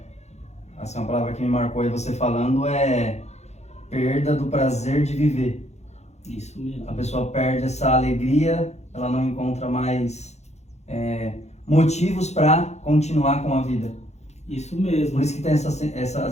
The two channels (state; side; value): late; right; 0.32 ms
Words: assim, uma palavra que me marcou aí você falando é perda do prazer de viver. Isso mesmo. A pessoa perde essa alegria, ela não encontra mais motivos para continuar com a vida. Isso mesmo. Por isso que tem